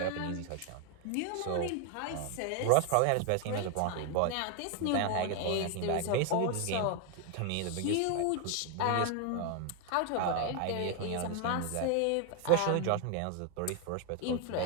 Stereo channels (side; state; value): both; different; correlation 0.01